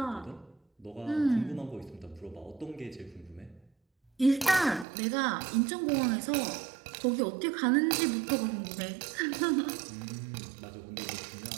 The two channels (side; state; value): left; drops out; at 4.9 s